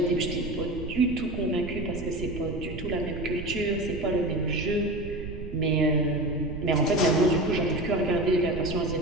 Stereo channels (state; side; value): noise; right; rumble, 10 dB below the sound